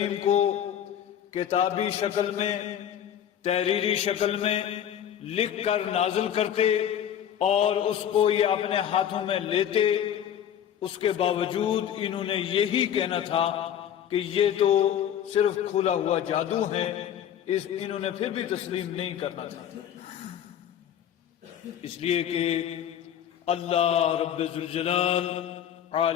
کو کتابی شکل میں، تحریری شکل میں لکھ کر نازل کرتے اور اس کو یہ اپنے ہاتھوں میں لیتے، اس کے باوجود انہوں نے یہی کہنا تھا کہ یہ تو صرف کھلا ہوا جادو ہے، انہوں نے پھر بھی تسلیم نہیں کرنا تھا، اس لیے کہ اللہ رب ذوالجلال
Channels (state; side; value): quieter; right; 9.8 dB